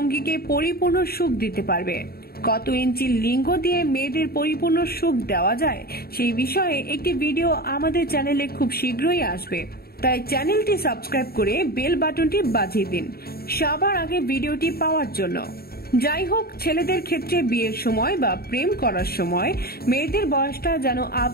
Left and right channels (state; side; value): late; right; 0.45 ms